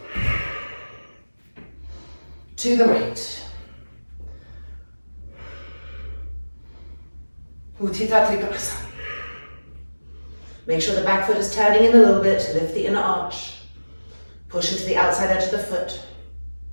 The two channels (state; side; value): inverted; both; correlation -1.00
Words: to the right. Utthita Trikonasana. Make sure the back foot is turning in a little bit to lift the inner arch. Push into the outside edge of the foot.